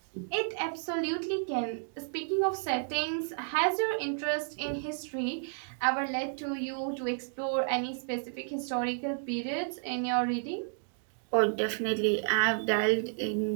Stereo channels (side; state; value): left; silent; digital silence